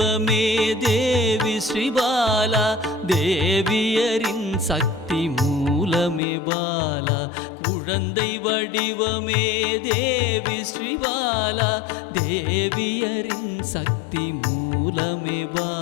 தேவி ஸ்ரீபாலா தேவியரின் சக்தி மூலமே பாலா குழந்தை வடிவமே தேவி ஸ்ரீபாலா தேவியரின் சக்தி மூலமே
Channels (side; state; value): right; drops out; at 6.2 s